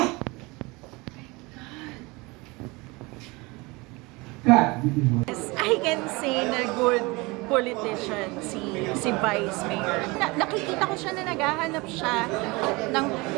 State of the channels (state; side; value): quieter; left; 24.7 dB